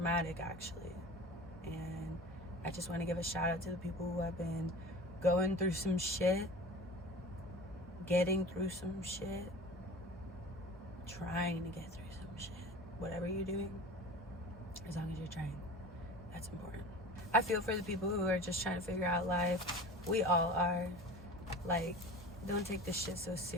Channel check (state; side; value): normal; both; correlation 0.37